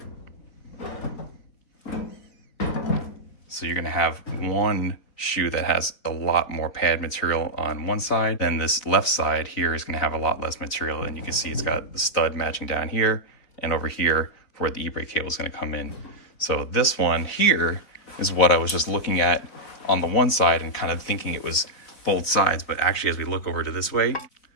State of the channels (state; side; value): late; right; 3.9 ms